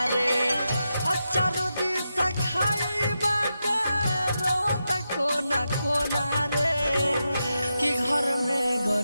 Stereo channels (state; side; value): inverted; both; correlation -0.87